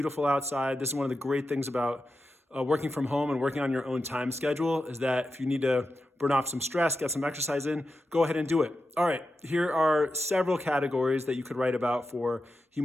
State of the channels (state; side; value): normal; both; correlation 0.90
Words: outside. This is one of the great things about working from home and working on your own time schedule, is that if you need to burn off some stress, get some exercise in, go ahead and do it. All right, here are several categories that you could write about for